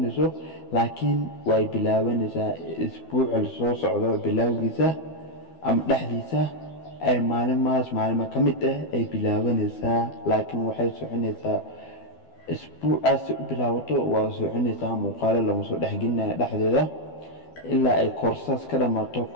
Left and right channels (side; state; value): right; late; 12 ms